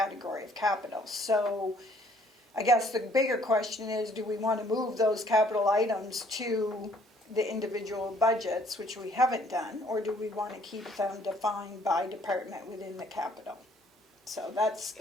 of capital. So I guess the bigger question is, do we want to move those capital items to the individual budgets, which we haven't done, or do we want to keep them defined by department within the capital? So that's,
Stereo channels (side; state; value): both; normal; correlation 0.61